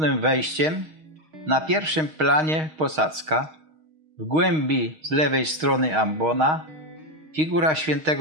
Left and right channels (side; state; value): left; late; 6.4 ms